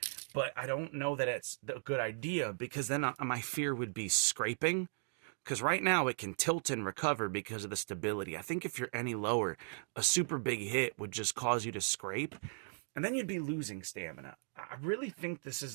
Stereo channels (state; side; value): silent; left; digital silence